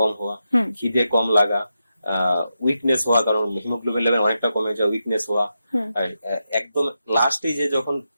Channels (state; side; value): inverted; both; correlation -0.87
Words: হওয়া, খিদে কম লাগা, উইকনেস হওয়া, কারণ হিমোগ্লোবিন লেভেল অনেকটা কমে যায়, উইকনেস হওয়া, একদম লাস্ট স্টেজে যখন